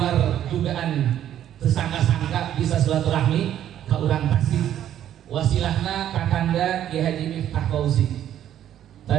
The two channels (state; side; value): quieter; left; 11.0 dB